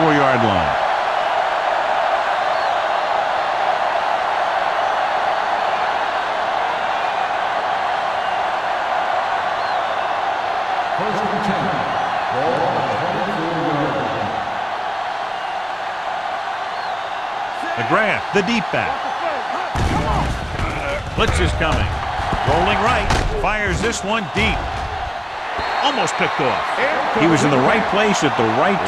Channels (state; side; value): identical; both; correlation 1.00